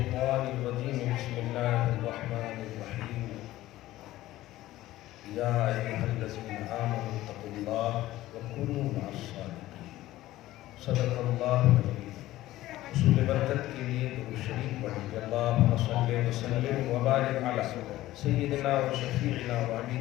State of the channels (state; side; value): quieter; right; 15.8 dB